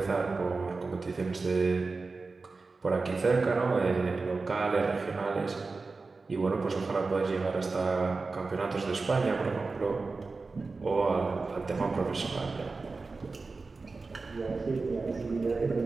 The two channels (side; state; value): left; quieter; 4.0 dB